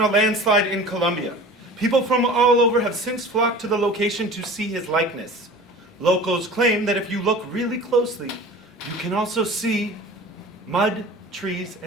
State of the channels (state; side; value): normal; both; correlation 0.40